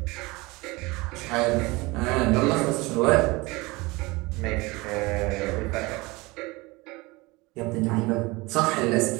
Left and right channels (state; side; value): quieter; left; 23.4 dB